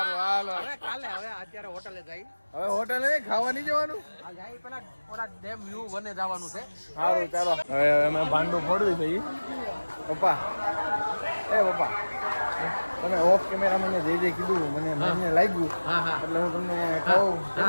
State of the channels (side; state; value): both; inverted; correlation -1.00